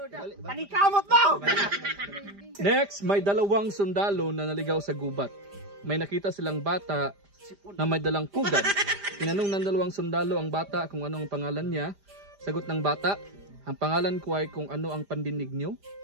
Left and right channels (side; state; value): left; late; 5.0 ms